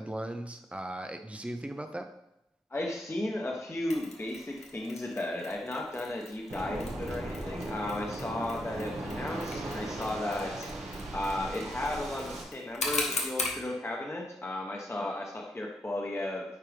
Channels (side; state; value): both; normal; correlation 0.79